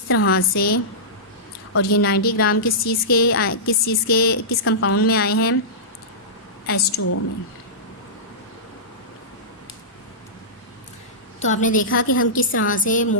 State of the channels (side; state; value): both; normal; correlation -0.17